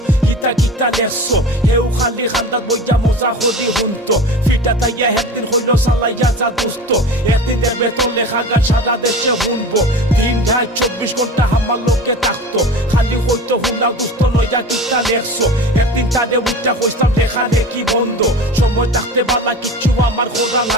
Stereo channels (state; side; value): normal; both; correlation 0.34